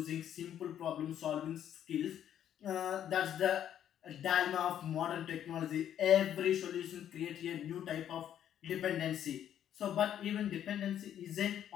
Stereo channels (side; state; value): right; quieter; 10.2 dB